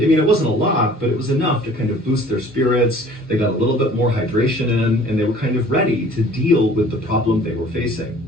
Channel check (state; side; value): normal; both; correlation 0.51